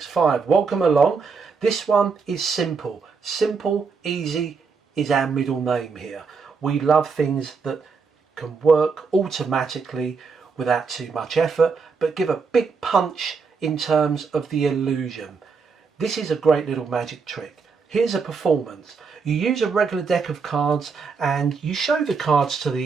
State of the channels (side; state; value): left; quieter; 5.1 dB